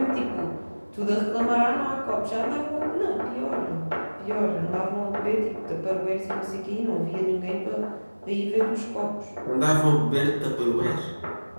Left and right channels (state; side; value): inverted; both; correlation -1.00